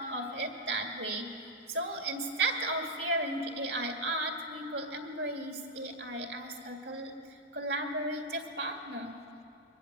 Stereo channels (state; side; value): normal; both; correlation -0.03